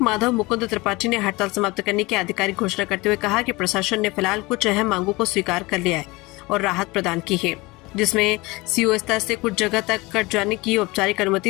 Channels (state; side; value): quieter; right; 22.9 dB